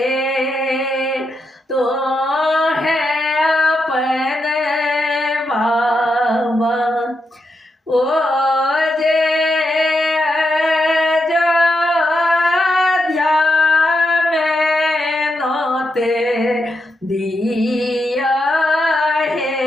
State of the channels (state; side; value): normal; both; correlation 0.84